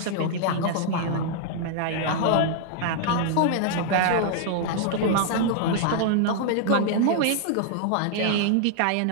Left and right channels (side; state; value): both; different; correlation -0.01